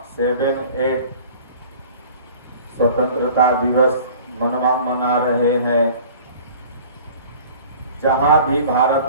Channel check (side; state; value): both; inverted; correlation -0.46